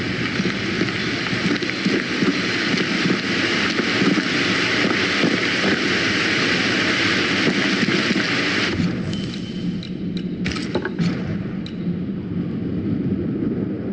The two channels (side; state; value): both; identical; correlation 1.00